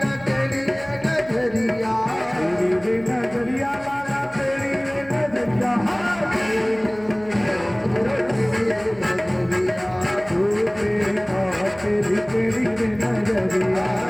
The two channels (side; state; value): right; noise; hum, 23 dB below the sound